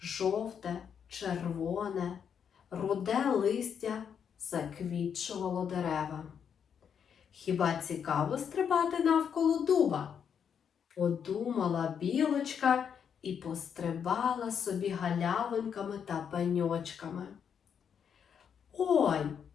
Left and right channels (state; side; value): quieter; right; 7.6 dB